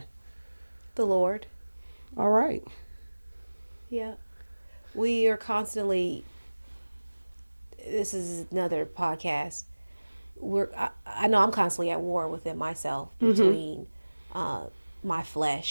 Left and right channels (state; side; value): inverted; both; correlation -1.00